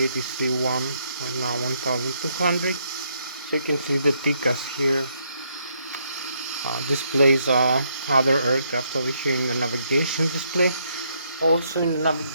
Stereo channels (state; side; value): inverted; both; correlation -0.74